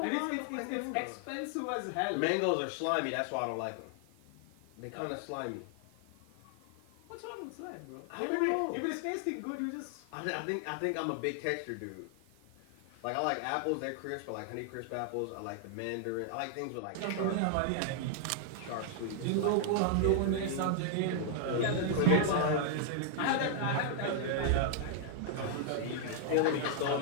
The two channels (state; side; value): different; both; correlation 0.00